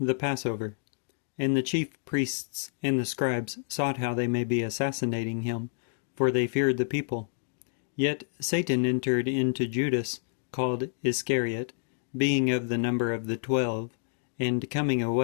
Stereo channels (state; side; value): silent; right; digital silence